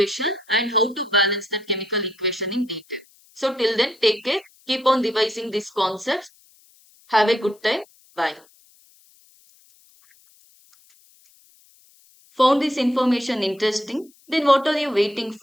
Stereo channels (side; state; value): left; noise; hiss, 30 dB below the sound